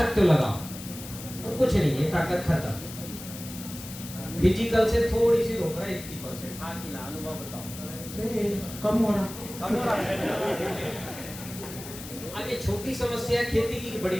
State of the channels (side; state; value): left; noise; hiss, 12 dB below the sound